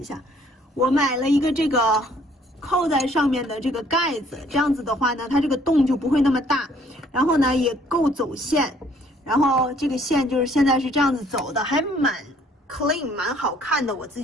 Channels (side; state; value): both; normal; correlation 0.61